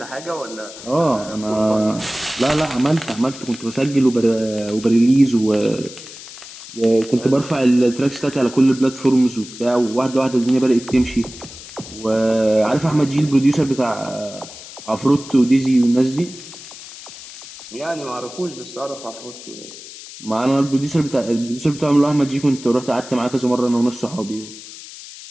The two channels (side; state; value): left; noise; hiss, 15 dB below the sound